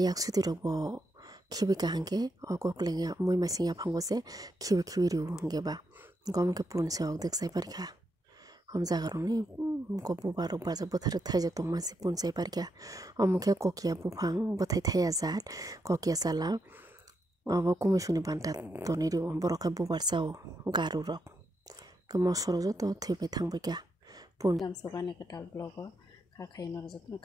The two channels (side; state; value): both; normal; correlation 0.82